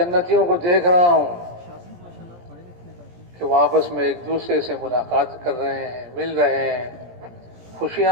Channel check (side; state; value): left; late; 17 ms